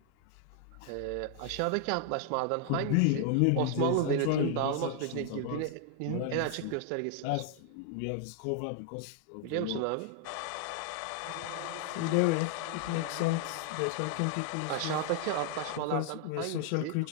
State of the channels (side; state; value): both; different; correlation 0.00